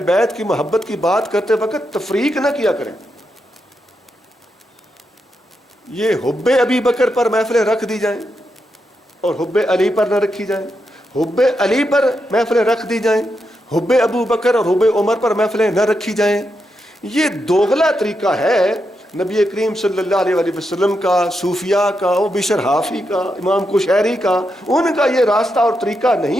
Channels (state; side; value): normal; both; correlation 0.85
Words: بیت کی محبت کی بات کرتے وقت تفریق نہ کیا کریں. یہ حب ابی بکر پر محفلیں رکھ دی جائیں اور حب علی پر نہ رکھی جائیں، حب علی پر محفلیں رکھ دی جائیں، حب ابو بکر اور حب عمر پر محفلیں نہ رکھی جائیں، یہ دوغلا طریقہ ہے نبی کریم صلی اللہ علیہ وآلہ وسلم کا، صوفیاء کا، وہ بشر حافی کا، امام کشیری کا، ان کا یہ راستہ اور طریقہ